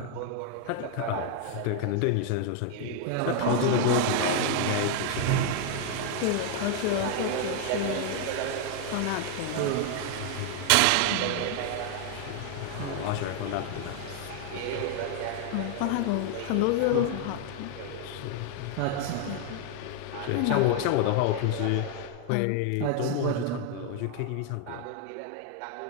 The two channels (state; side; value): different; both; correlation 0.00